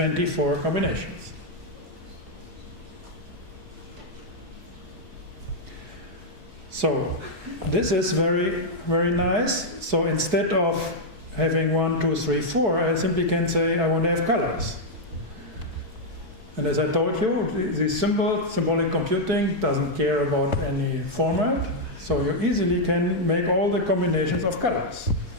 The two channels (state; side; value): late; left; 4.6 ms